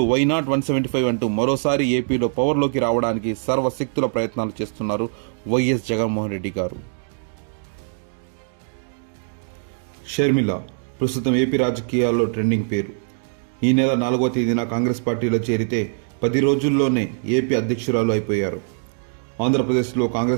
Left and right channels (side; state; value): left; silent; digital silence